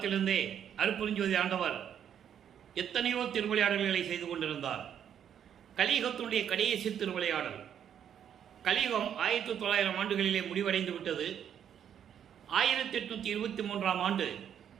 அருட்பெருஞ்சோதி ஆண்டவர் எத்தனையோ திருவிளையாடல்களை செய்து கொண்டிருந்தார். கலியுகத்தினுடைய கடைசி திருவிளையாடல், கலியுகம் 1900 ஆண்டுகளிலே முடிவடைந்து விட்டது. 1823 ஆண்டு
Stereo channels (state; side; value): quieter; left; 9.1 dB